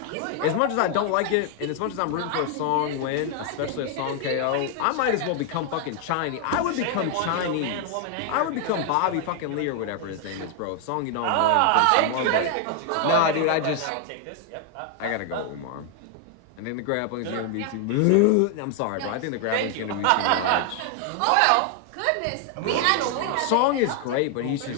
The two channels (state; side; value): different; both; correlation 0.00